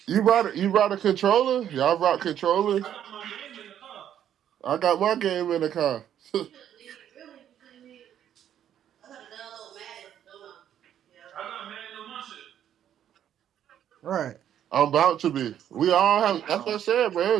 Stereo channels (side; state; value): left; quieter; 10.2 dB